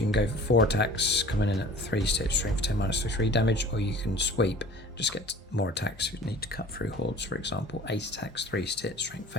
can go for 4 attacks, coming in at 3 stat, strength 10 -3 damage, or you can sweep, just get more attacks if you need to cut through hordes, for example. 8 attacks, 3 stat, strength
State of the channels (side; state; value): both; normal; correlation 0.44